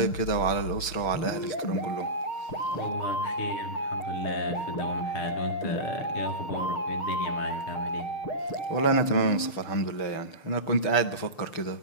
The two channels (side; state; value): right; late; 6.6 ms